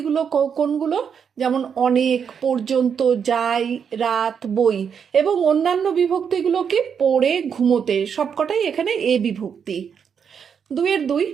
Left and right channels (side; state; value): left; quieter; 7.2 dB